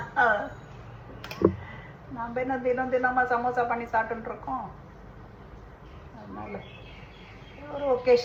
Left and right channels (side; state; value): both; identical; correlation 1.00